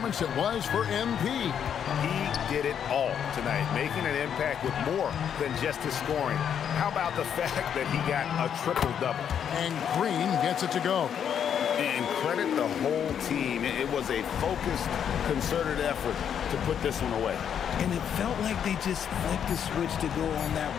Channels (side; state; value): right; quieter; 8.5 dB